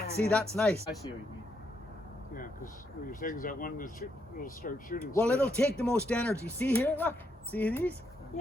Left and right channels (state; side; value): normal; both; correlation 0.77